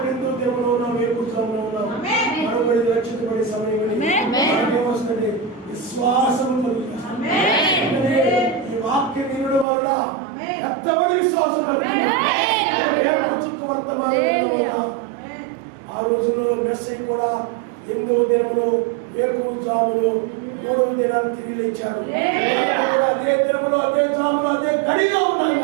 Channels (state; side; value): drops out; left; at 9.7 s